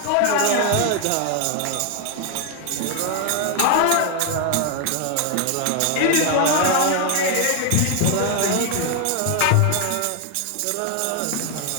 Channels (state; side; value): different; both; correlation 0.01